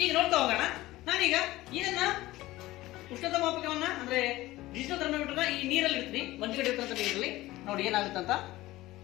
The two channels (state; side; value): quieter; right; 17.6 dB